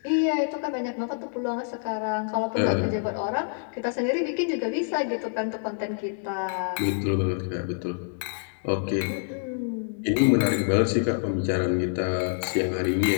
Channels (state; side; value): silent; right; digital silence